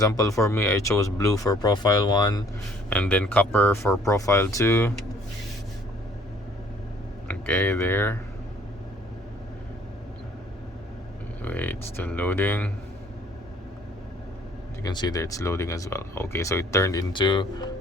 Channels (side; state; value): both; normal; correlation 0.59